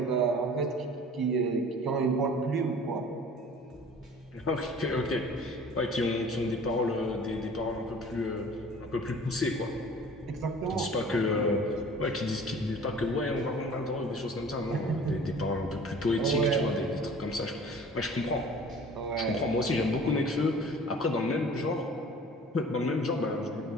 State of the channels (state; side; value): normal; both; correlation 0.46